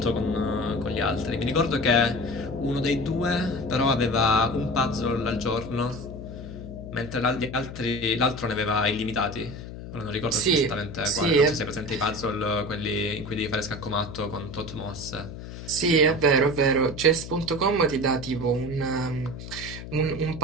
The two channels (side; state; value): left; noise; hum, 11 dB below the sound